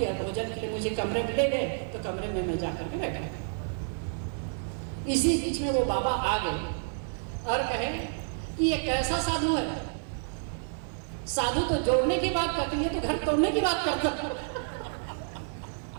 भोजन के लिए मुझे कमरे में ले गए, तो कमरे में मैं जाकर के बैठा। इसी बीच में वो बाबा आ गए और कहे कि ये कैसा साधु है, साधु तो जोड़ने की बात करती है तो घर तोड़ने की बात करता है।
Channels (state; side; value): silent; left; 58 dB below the other